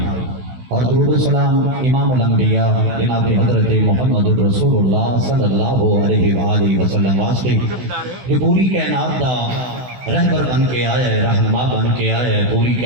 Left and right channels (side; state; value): left; late; 16 ms